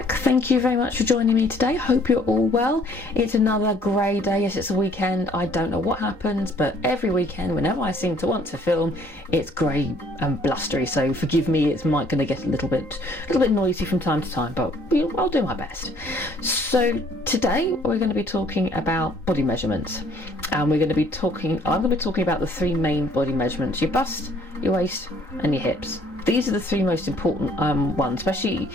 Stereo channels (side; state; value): right; late; 3.9 ms